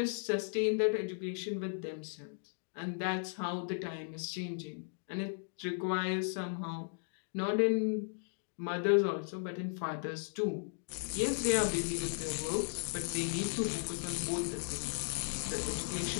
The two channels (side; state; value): right; silent; digital silence